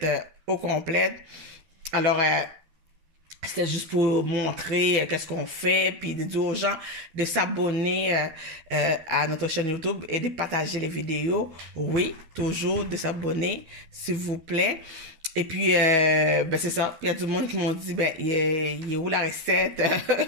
au complet. Alors, c'était juste pour montrer qu'est-ce qu'on fait, puis de dire aux gens de s'abonner à notre chaîne YouTube et de partager les vidéos. Oui, toujours de s'abonner, s'il vous plaît. Et puis, c'est ça. Il y a du monde qui m'ont dit, il est où la recette?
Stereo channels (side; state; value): left; late; 12 ms